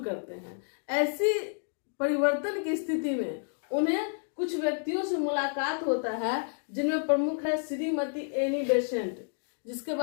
हैं। ऐसी परिवर्तन की स्थिति में उन्हें कुछ व्यक्तियों से मुलाकात होता है, जिनमें प्रमुख है श्रीमती एनी बेसेंट, जिसके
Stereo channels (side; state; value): right; silent; digital silence